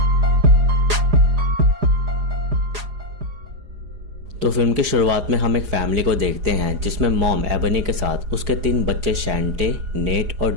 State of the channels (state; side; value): late; left; 4.9 ms